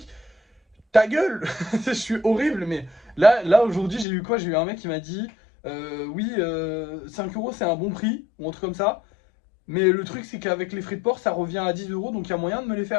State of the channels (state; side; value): drops out; right; at 4.0 s